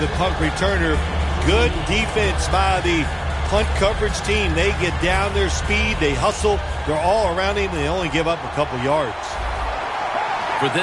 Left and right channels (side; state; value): both; identical; correlation 1.00